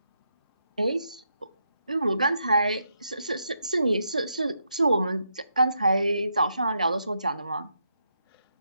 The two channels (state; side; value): inverted; both; correlation -0.81